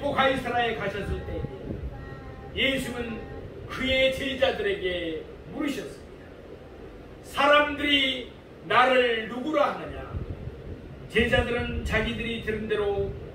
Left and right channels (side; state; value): both; identical; correlation 1.00